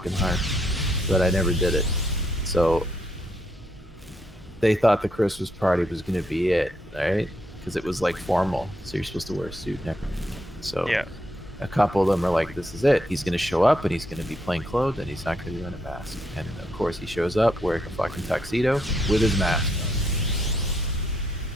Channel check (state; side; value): normal; both; correlation 0.76